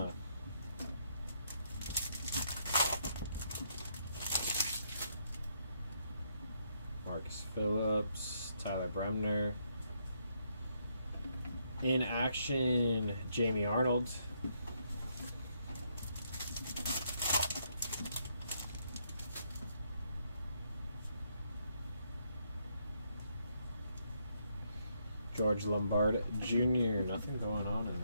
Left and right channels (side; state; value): both; inverted; correlation -0.74